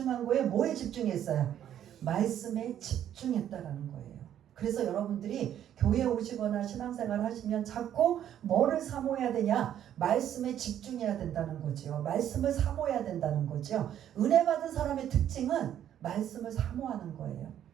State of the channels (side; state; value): left; quieter; 10.6 dB